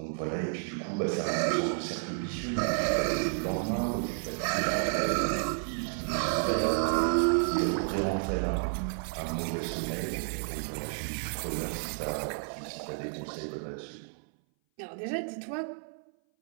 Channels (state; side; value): silent; left; 57 dB below the other